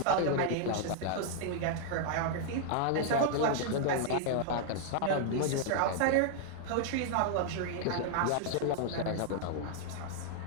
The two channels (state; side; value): different; both; correlation 0.00